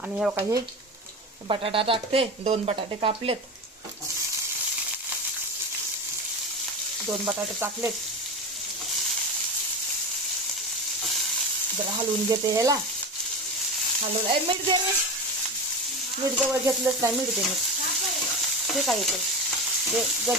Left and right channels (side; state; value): both; normal; correlation 0.24